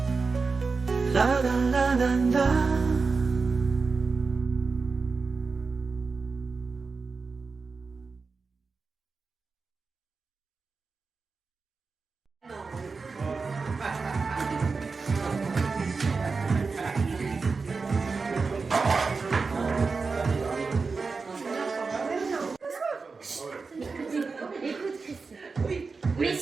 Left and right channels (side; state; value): left; quieter; 4.5 dB